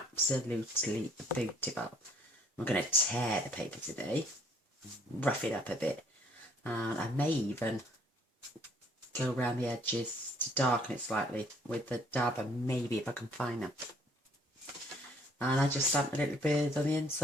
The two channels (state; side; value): normal; both; correlation 0.61